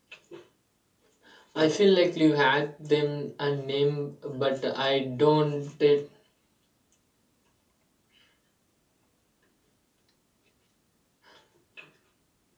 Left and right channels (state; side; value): identical; both; correlation 1.00